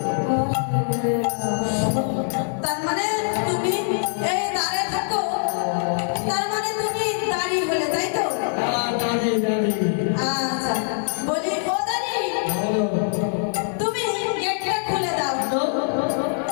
তার মানে তুমি এই দাঁড়ে থাকো, তার মানে তুমি দাঁড়িয়ে হলে, তাই তো? দাঁড়িয়ে দাঁড়িয়ে আচ্ছা, বলি ও দাঁড়িয়ে, তুমি গেটটা খুলে দাও,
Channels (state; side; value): silent; right; digital silence